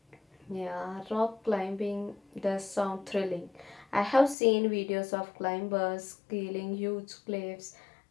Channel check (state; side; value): drops out; right; at 4.4 s